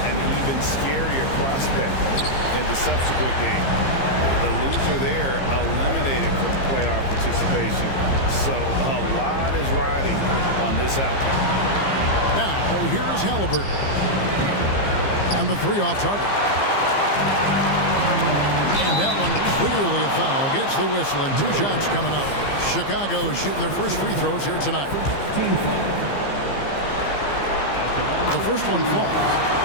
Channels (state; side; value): late; right; 15 ms